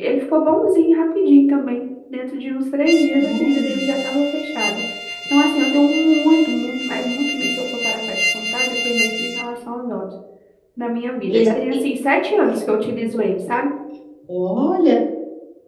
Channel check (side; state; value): both; identical; correlation 1.00